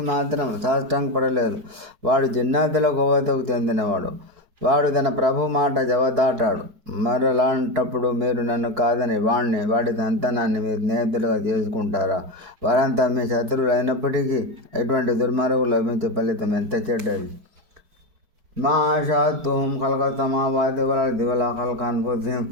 మాత్రం సాష్టాంగపడలేదు. వాడు జిన్నాతుల కోవతకు చెందినవాడు. వాడు తన ప్రభు మాట జవదాటాడు. మరలాంటప్పుడు మీరు నన్ను కాదని వాడి సంతానాన్ని మీరు స్నేహితులుగా చేసుకుంటారా? వారంతా మీ శత్రువులు అయినప్పటికీ ఎటువంటి దుర్మార్గులు లభించే ఫలితం ఎంత చెడ్డది. ما شاءتهم خلق السماوات والأرض ولا خلق أنفسهم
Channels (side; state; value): left; late; 4.6 ms